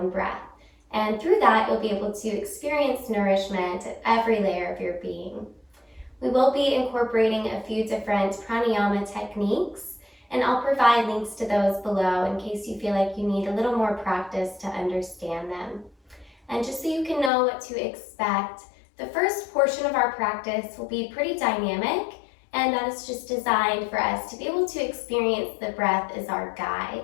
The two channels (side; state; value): right; drops out; at 17.3 s